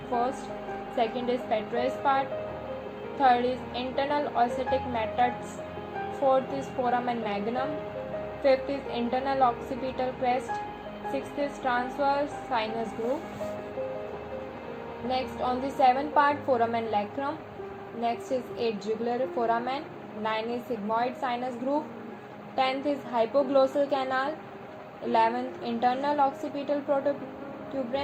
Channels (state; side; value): identical; both; correlation 1.00